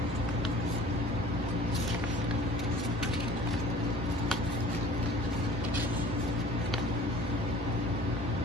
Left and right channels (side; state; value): both; normal; correlation 0.47